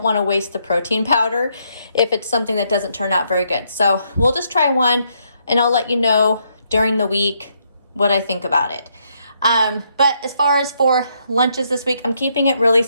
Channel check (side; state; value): both; inverted; correlation -0.75